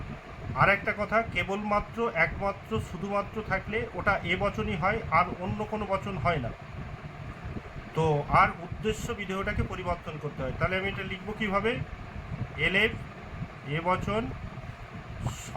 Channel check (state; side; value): identical; both; correlation 1.00